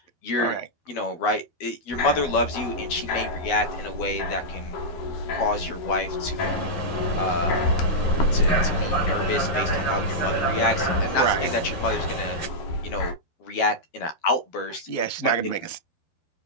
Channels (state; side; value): late; right; 12 ms